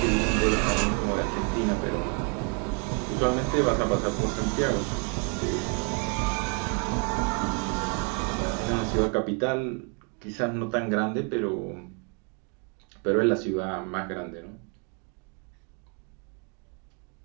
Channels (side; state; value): left; quieter; 35.7 dB